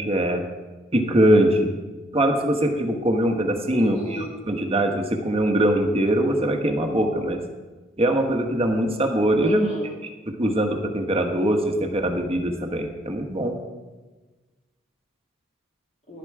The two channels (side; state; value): both; normal; correlation 0.68